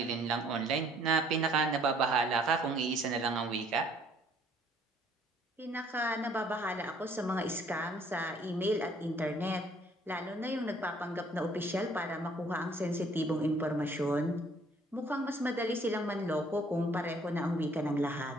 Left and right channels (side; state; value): both; normal; correlation 0.60